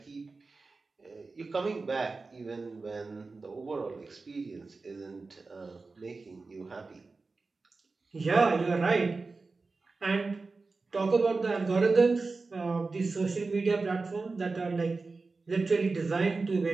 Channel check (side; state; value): left; quieter; 3.9 dB